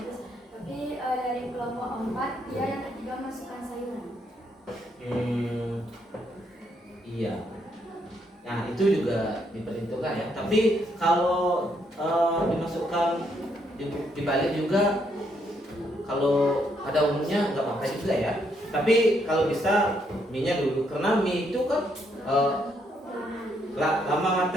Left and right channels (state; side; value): normal; both; correlation 0.74